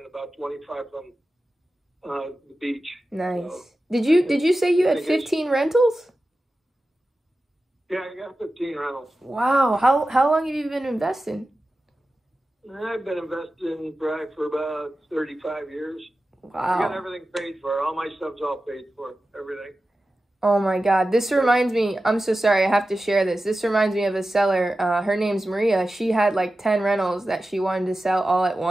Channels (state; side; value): normal; both; correlation 0.94